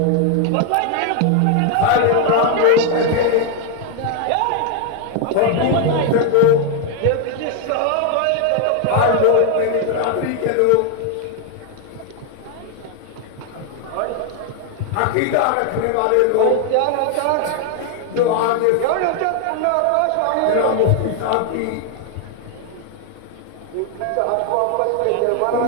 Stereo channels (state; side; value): different; both; correlation 0.00